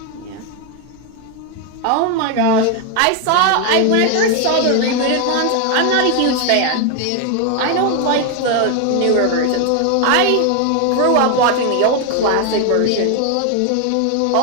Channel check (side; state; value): both; different; correlation 0.00